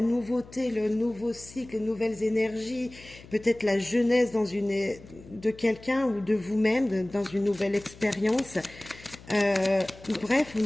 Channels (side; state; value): left; noise; hum, 20 dB below the sound